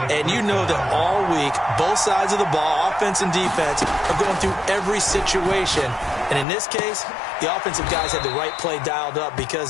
And you know that all week, both sides of the ball, offense and defense, are going through every situation. And in this case, the offensive guys had the right play dialed up because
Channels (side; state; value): right; drops out; at 6.5 s